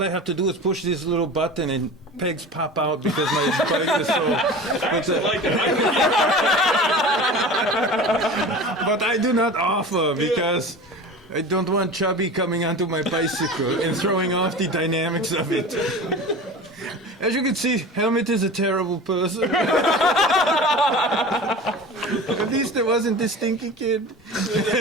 I have to do is push this little button and pegs pop out because my bike is so. I actually like it. But I do not offer because I don't want Chubby coming onto my bicycle and throwing off the dynamics of it. As you can see, Helmet is a terrible person. At least it wasn't the stinky kid.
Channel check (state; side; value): normal; both; correlation 0.35